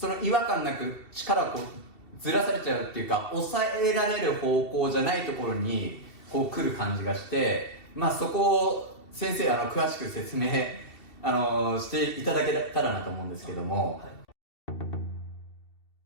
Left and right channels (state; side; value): late; right; 2.7 ms